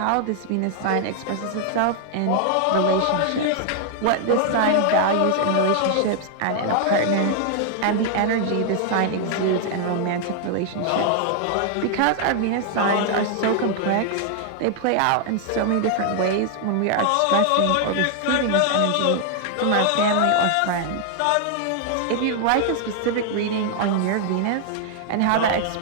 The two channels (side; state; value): both; different; correlation 0.00